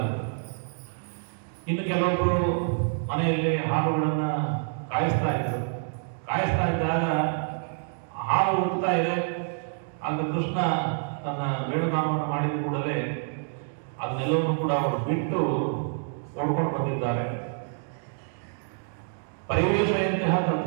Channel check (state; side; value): silent; left; 60 dB below the other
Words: ಇನ್ನು ಕೆಲವೊಬ್ರು ಮನೆಯಲ್ಲಿ ಹಾಲುಗಳನ್ನ ಕಾಯಿಸ್ತಾ ಇದ್ದಾಗ ಹಾಲು ಉಡ್ತಾ ಇದೆ. ಆಗ ಕೃಷ್ಣ ತನ್ನ ವೇಣುಗಾನವನ್ನು ಮಾಡಿದ ಕೂಡಲೇ ಅದನ್ನೆಲ್ಲವನ್ನು ಕೂಡ ಅವರು ಬಿಟ್ಟು ಓಡ್ಕೊಂಡು ಬಂದಿದ್ದಾರೆ. ಪರಿವೇಶೆಯಂತಹ